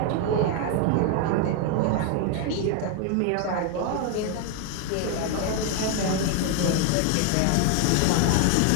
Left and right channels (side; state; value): both; different; correlation 0.01